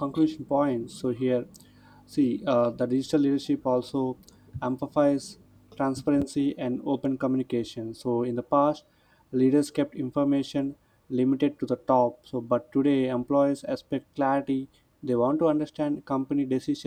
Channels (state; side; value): identical; both; correlation 1.00